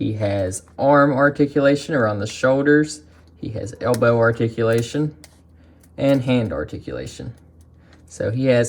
has arm articulation around the shoulders. He has elbow articulation and hand articulation. So he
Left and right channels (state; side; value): identical; both; correlation 1.00